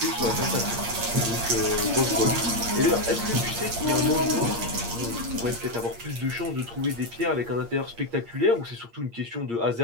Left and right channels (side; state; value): left; late; 8.6 ms